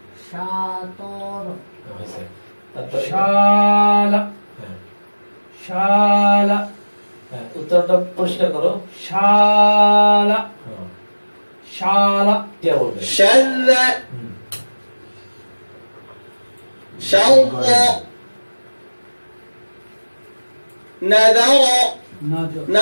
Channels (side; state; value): both; inverted; correlation -1.00